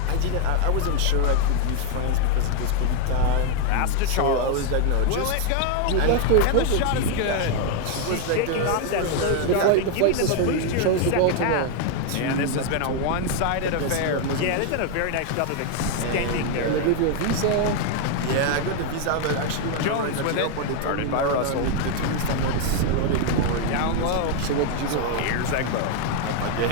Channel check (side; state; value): both; different; correlation 0.01